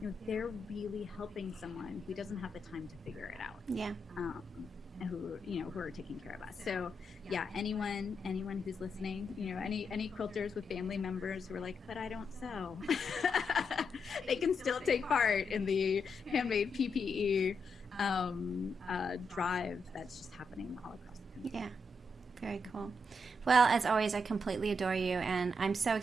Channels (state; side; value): normal; both; correlation 0.82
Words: they're really helping someone who doesn't have the time to figure it out. Yeah. And who are taking care of us. So anyone who's listening, any quilters with family members who are like, but I don't sew, they can still take part in the handmade PPE drive that's just happening all across the country. Yeah. Very cool. Well, as always, I completely adore you, and I'm so